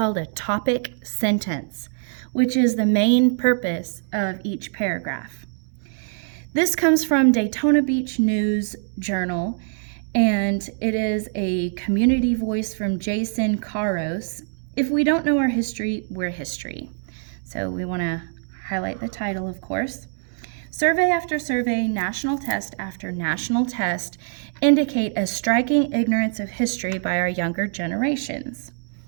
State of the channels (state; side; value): silent; left; 63 dB below the other